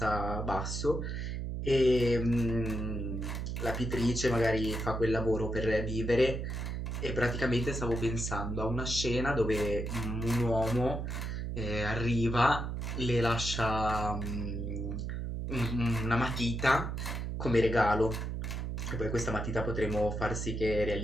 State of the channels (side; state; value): right; noise; hum, 3 dB below the sound